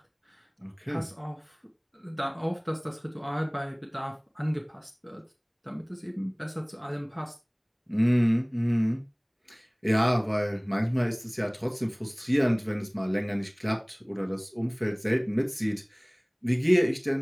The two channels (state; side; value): identical; both; correlation 1.00